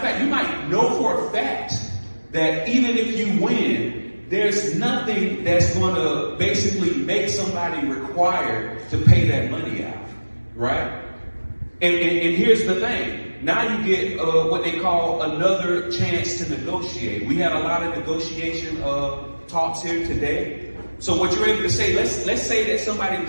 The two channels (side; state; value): both; inverted; correlation -1.00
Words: fact, you might know for a fact that even if you win, there's nothing that's going to basically make somebody required to pay that money out, right? And here's the thing. Now you get what they call another chance to negotiate. We had a lot of negotiation talks here today. So what you're able to say, let's say that somebody